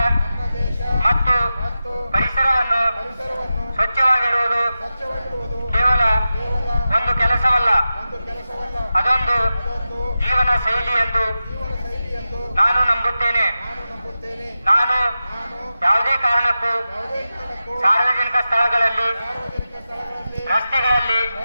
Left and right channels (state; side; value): inverted; both; correlation -0.93